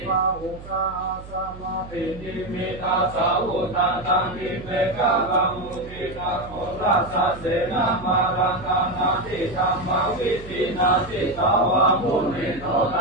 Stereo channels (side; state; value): right; noise; hum, 15 dB below the sound